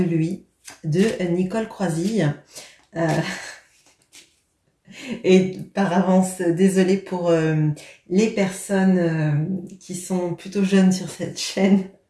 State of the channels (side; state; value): both; identical; correlation 1.00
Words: lui, de Nicole Croisille. Euh, et par avance, désolée pour les personnes qui sont plutôt jeunes sur cette chaîne.